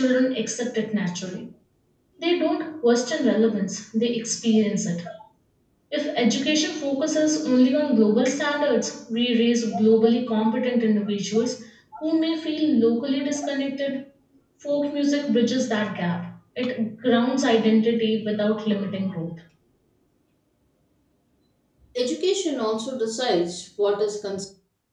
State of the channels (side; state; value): both; identical; correlation 1.00